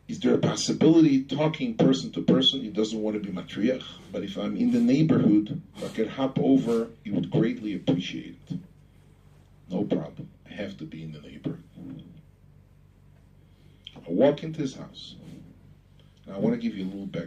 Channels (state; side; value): identical; both; correlation 1.00